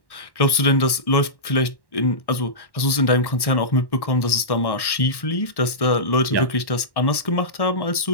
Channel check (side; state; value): right; late; 1.1 ms